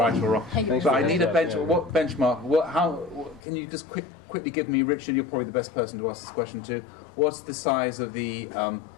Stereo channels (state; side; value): drops out; right; at 3.4 s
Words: or wrong. But I need a benchmark. What benchmark? Can you just quickly give me, Richard, you're probably the best person to ask this question to, what's the size of the